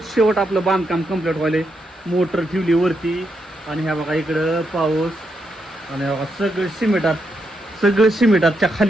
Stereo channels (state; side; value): normal; both; correlation 0.81